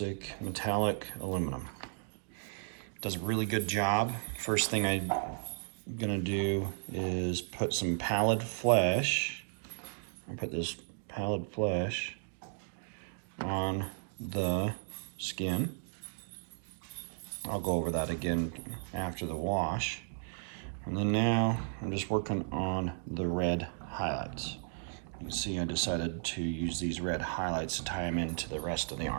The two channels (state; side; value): silent; left; digital silence